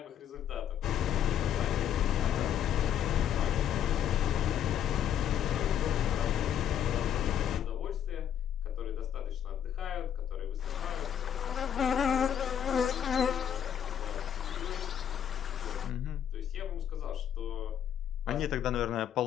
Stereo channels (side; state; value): right; quieter; 9.5 dB